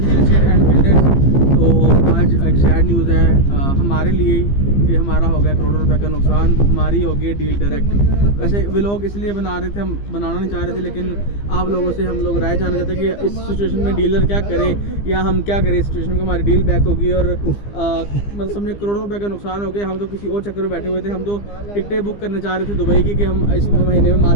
estate and builders. तो आज एक सैड न्यूज़ है हमारे लिए कि हमारा हो गया करोड़ों रुपए का नुकसान, हमारी हो गई डील डायरेक्ट। वैसे वे लोग इसलिए बना रहे थे, हम बनाना नहीं चाह रहे थे, लेकिन आप लोगों से हम लोग राय जानना चाहते हैं कि इस सिचुएशन में डीलर क्या करे या हम क्या करें। इस सिचुएशन में हमारी डील बैक होगी और मतलब समझे करोड़ों रुपए का नुकसान हो गया। हम तो किसी और चक्कर में बैठे हुए थे, हम तो टिकटें बुक करने चाह रहे थे दुबई की कि हम इस महीने में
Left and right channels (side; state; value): right; late; 15 ms